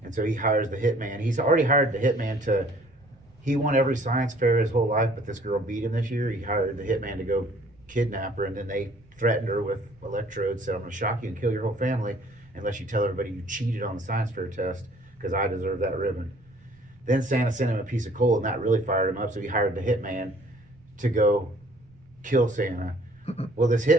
And so he hires the hitman. He's already hired the hitman he won every science fair his whole life, but this girl beat him this year. He hired the hitman to go kidnap her, and then they threatened her with electrodes, said, I'm going to shock you and kill your whole family unless you tell everybody you cheated on the science fair test because I deserve that ribbon. Then Santa sent him a piece of coal, and that really fired him up, so he hired the hitman to go kill Santa. Well, this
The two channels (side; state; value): right; noise; rumble, 29 dB below the sound